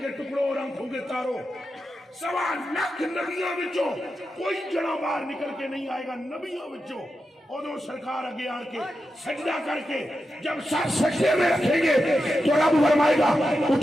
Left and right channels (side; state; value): both; normal; correlation 0.89